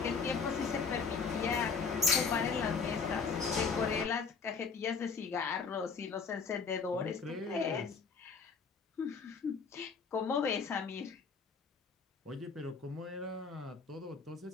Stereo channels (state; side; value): quieter; right; 5.2 dB